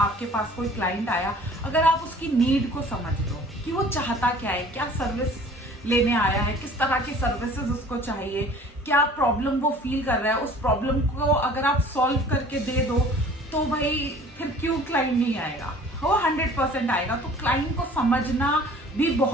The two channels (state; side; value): normal; both; correlation 0.49